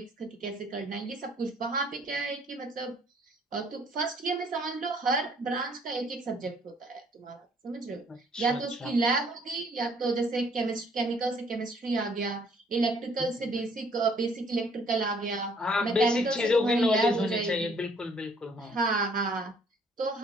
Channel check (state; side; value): normal; both; correlation 0.61